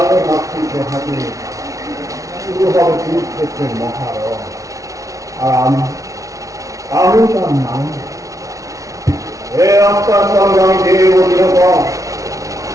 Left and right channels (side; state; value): left; late; 0.16 ms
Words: মাতৃকে হাতে শুরু হবে কুরুক্ষেত্রের মহারণ। আর আমি তার নাম হে আত্মার সঙ্গে আমি দেব নিরূপণ।